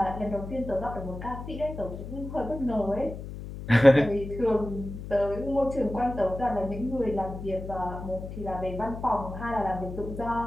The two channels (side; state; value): left; noise; hum, 9 dB below the sound